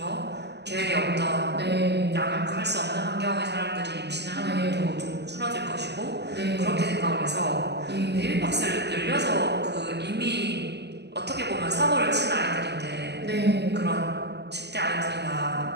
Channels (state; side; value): late; left; 0.49 ms